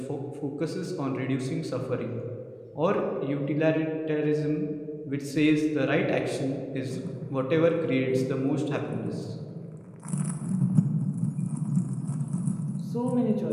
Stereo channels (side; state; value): both; identical; correlation 1.00